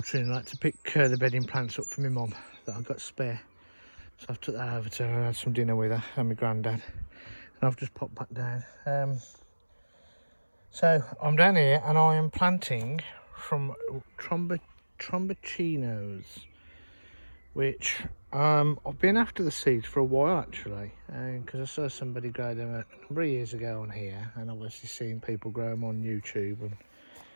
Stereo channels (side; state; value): both; inverted; correlation -1.00